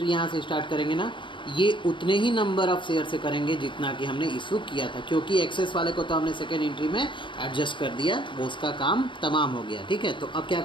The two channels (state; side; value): late; right; 0.24 ms